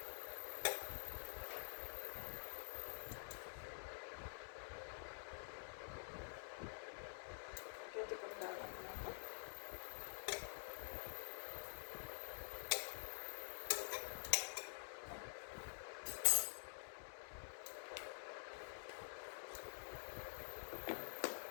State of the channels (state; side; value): silent; right; digital silence